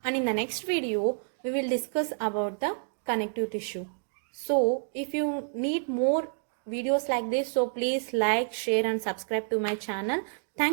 and in the next video we will discuss about the connective tissue. So if you need more videos like this, so please like, share and subscribe to my channel.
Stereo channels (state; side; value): silent; left; digital silence